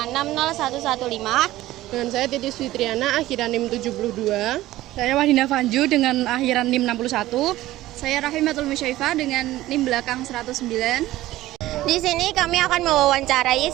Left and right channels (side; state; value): left; quieter; 15.9 dB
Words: Dengan saya Titis Fitriana, akhiran NIM 72. Saya Wahdina Fanju dengan akhiran NIM 61. Saya Rahimatul Musyaifah dengan NIM belakang 109. Di sini kami akan mewawancarai